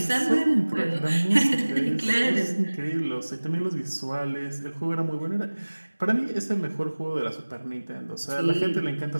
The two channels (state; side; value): inverted; both; correlation -1.00